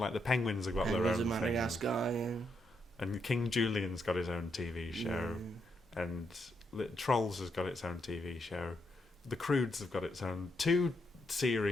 like the penguins have got their own thing. Madagascar, yeah. And King Julian's got his own TV show, and Trolls has got its own TV show. The Croods have got its own 2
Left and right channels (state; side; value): normal; both; correlation 0.79